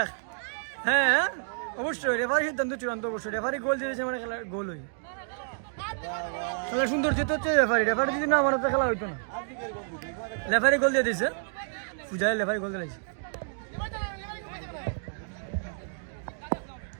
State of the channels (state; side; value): silent; left; digital silence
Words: এক হ্যাঁ অবশ্যই রেফারি সিদ্ধান্ত চূড়ান্ত অবশ্যই রেফারি গোল দিয়েছে মানে খেলার গোল হই খেলা সুন্দর যেতে হচ্ছে রেফারি যদি না মানে তো খেলা হইতো না রেফারি গোল দিয়ে দিয়েছে পূজায় রেফারি গোল দিয়েছে